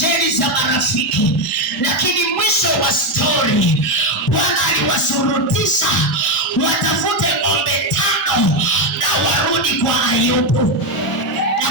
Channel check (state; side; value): normal; both; correlation 0.09